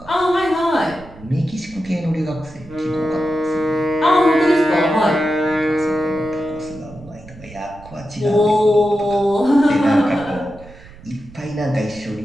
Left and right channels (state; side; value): noise; right; rumble, 20 dB below the sound